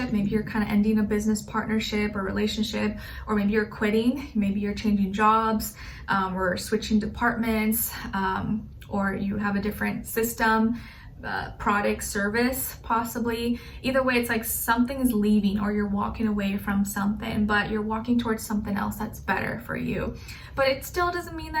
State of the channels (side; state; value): both; identical; correlation 1.00